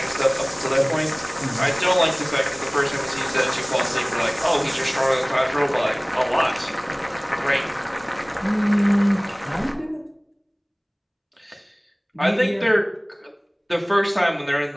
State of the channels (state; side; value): identical; both; correlation 1.00